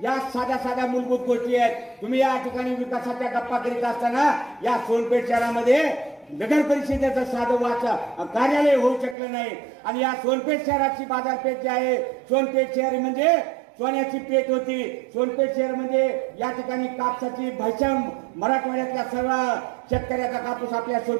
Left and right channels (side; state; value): left; drops out; at 9.2 s